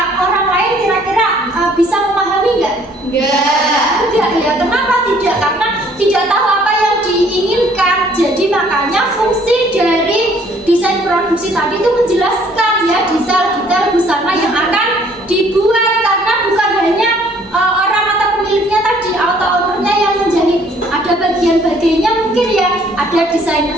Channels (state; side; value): normal; both; correlation 0.60